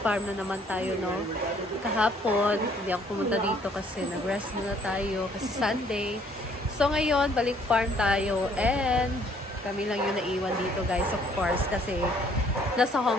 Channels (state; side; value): normal; both; correlation 0.62